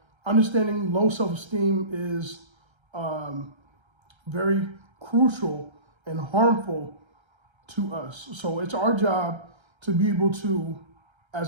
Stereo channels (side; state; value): left; late; 1.3 ms